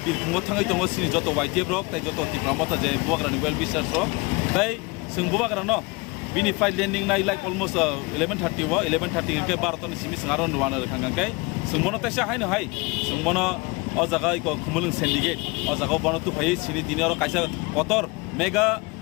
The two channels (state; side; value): quieter; right; 26.3 dB